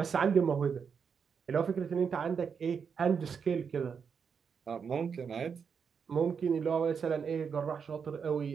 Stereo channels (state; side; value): quieter; left; 6.4 dB